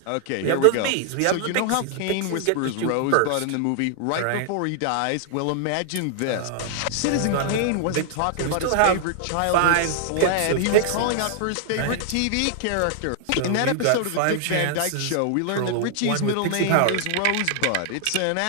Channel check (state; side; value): different; both; correlation -0.01